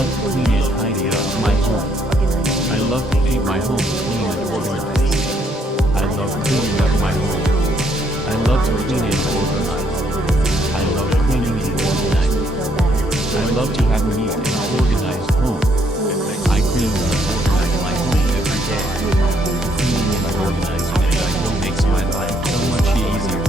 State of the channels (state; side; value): normal; both; correlation 0.70